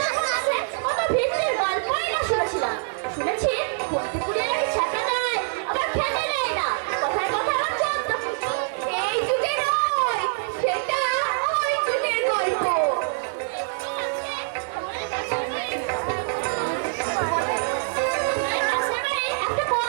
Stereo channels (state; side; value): silent; left; digital silence